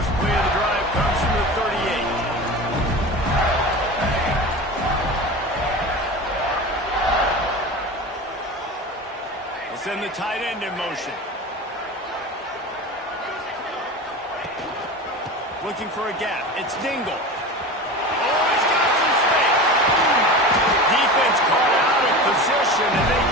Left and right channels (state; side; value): normal; both; correlation 0.31